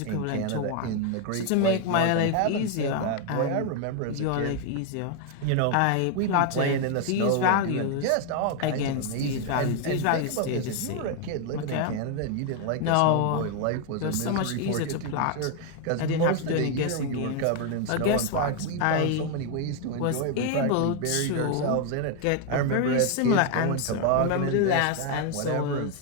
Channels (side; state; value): both; different; correlation 0.01